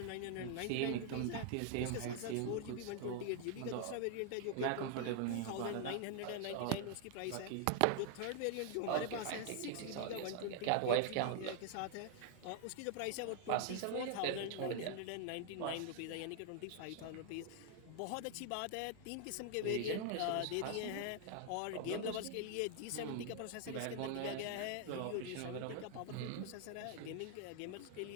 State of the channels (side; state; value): both; different; correlation 0.00